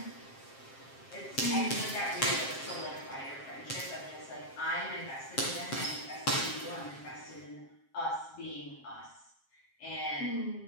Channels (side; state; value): right; late; 7.5 ms